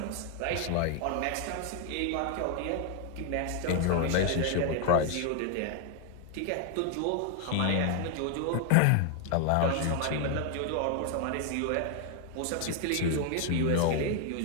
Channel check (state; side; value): different; both; correlation 0.00